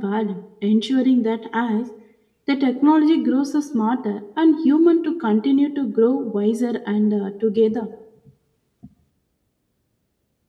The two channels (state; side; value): identical; both; correlation 1.00